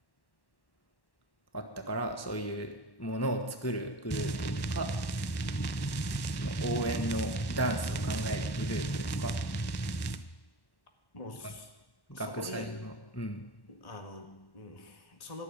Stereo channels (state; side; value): late; right; 1.1 ms